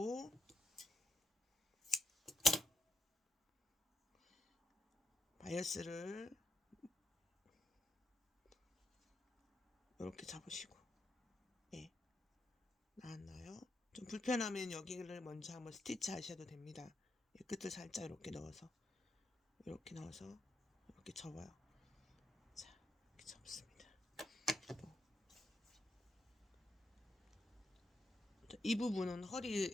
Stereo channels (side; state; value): both; normal; correlation 0.78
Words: 바이어스를 이렇게 잡으시고, 예, 나왔나요? 좀 불편하면 여기를 먼저 한번 스티치 하셔도 됩니다. 예, 끝을 살짝 이렇게 넣어서 이렇게 접어요. 자, 이렇게 접습니다. 이 부분은